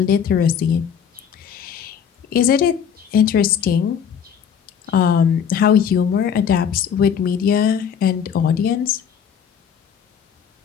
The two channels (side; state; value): right; quieter; 7.8 dB